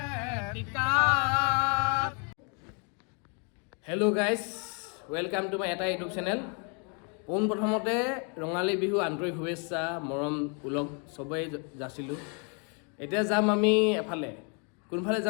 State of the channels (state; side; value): quieter; right; 37.7 dB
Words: hello' guys welcome to my এটা ইউটিউব চেনেল পোনপ্ৰথমতে ৰঙালী বিহু আন্তৰিক শুভেচ্ছা মৰম ওলগ চবেই যাচিলোঁ এতিয়া যাম আমি এফালে কোনফালে